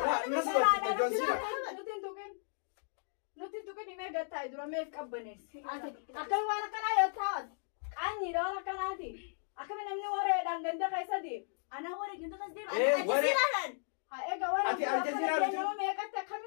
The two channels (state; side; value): silent; right; digital silence